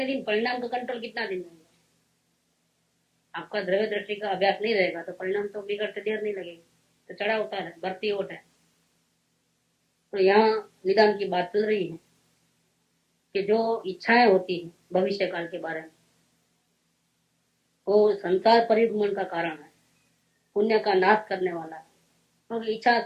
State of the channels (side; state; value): both; identical; correlation 1.00